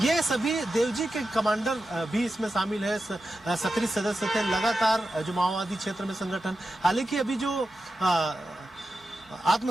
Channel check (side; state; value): both; normal; correlation 0.91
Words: सभी देवजी के कमांडर भी इसमें शामिल है, सक्रिय सदस्य थे लगातार जो माओवादी क्षेत्र में संगठन। हालांकि अभी जो